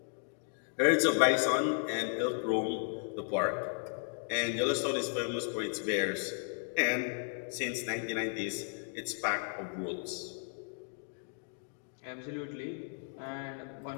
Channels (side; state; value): right; silent; 55 dB below the other